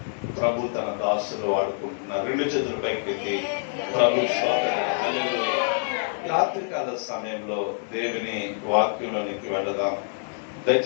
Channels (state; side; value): silent; right; 61 dB below the other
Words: ప్రభు తన దాసులు వాడుకుంటున్నారు. రెండు చేతుల పైకెత్తి ప్రభు రాత్రికాల సమయంలో దేవుని వాక్యంలోనికి వెళదాం.